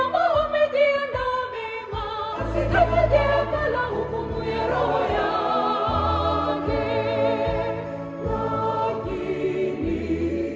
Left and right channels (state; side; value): identical; both; correlation 1.00